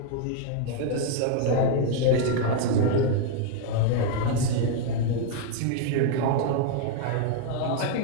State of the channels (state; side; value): different; both; correlation 0.00